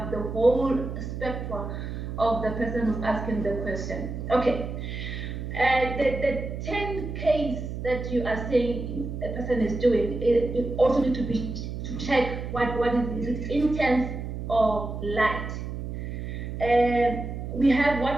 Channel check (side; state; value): right; noise; hum, 6 dB below the sound